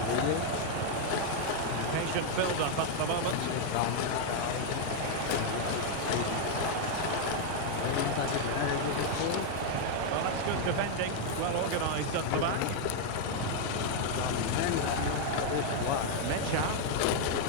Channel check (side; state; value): both; different; correlation 0.00